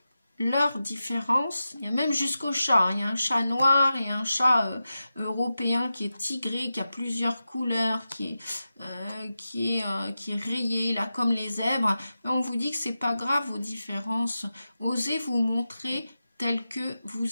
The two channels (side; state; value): both; inverted; correlation -0.92